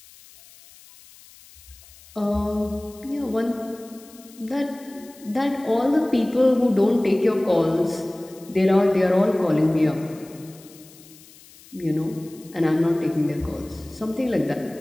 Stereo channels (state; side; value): noise; left; hiss, 23 dB below the sound